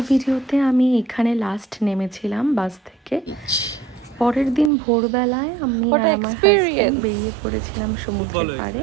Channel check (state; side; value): drops out; left; at 4.7 s